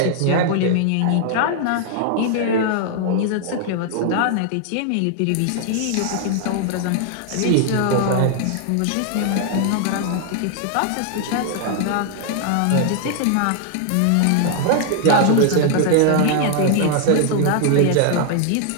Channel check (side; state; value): both; different; correlation 0.00